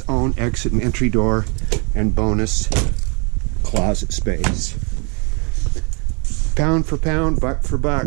own exit and entry door. And bonus closet space. Pound for pound, buck for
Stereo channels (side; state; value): left; quieter; 34.4 dB